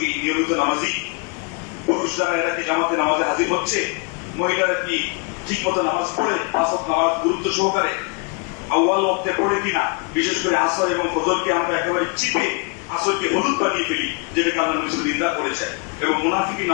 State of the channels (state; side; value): quieter; right; 35.2 dB